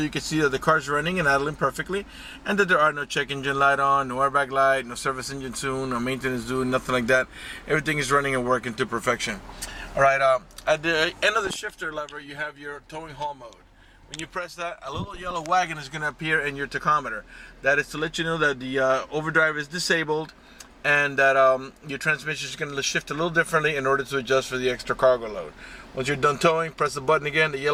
you can see that the car's running and idling perfectly, and that there are no check engine light on, no airbag light, no service engine soon, no maintenance due, nothing like that. Everything is running and working to perfection. All right, at the end of the shifter lever, you have your towing haul mode. When you press that, a little yellow wagon is going to appear in your tachometer. That is to let you know that the overdrive is disabled, and that your transmission is going to shift a little differently in order to adjust for the extra cargo load. Once you're done towing, press the button again, the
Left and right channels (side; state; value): both; identical; correlation 1.00